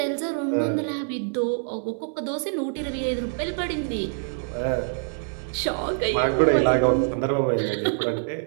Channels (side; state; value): left; silent; 61 dB below the other